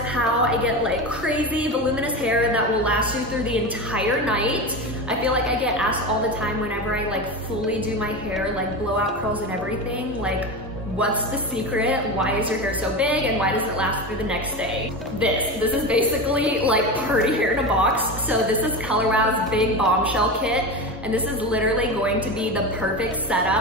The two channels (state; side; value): normal; both; correlation 0.23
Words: how I get like crazy voluminous hair that will last you through the entire night. I feel like I get asked all the time whenever I like fully do my hair, like blowout curls and everything, like what's the secret? Why is your hair so big and why does it last through the next day? This is basically like party hair in a box. So this is Color Wow's big bombshell kit. And this is literally going to be the perfect